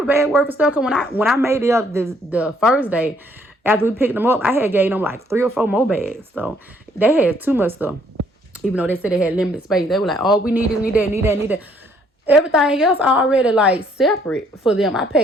bag worth of stuff. Cause when I made it up the first day, after we picked them up, I had gave them like 3 or 4 more bags. So they had too much stuff. Even though they said they had limited space, they were like, "Oh, we need this, need that." Everything else already like separate for them. I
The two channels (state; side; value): normal; both; correlation 0.66